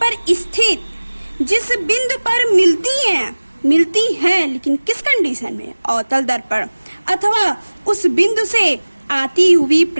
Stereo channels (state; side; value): inverted; both; correlation -1.00